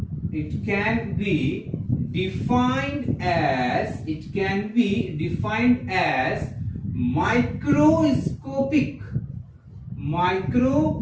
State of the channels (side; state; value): both; identical; correlation 1.00